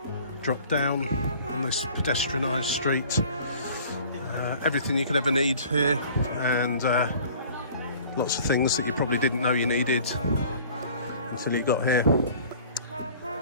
drop down on this pedestrianised street. Everything you could ever need here, and lots of things that you probably didn't know you needed until you got here.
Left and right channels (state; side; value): inverted; both; correlation -0.48